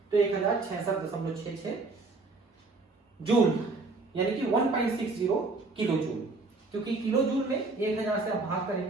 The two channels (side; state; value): left; quieter; 3.6 dB